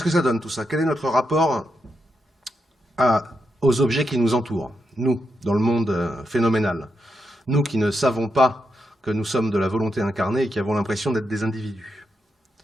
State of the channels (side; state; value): both; normal; correlation 0.84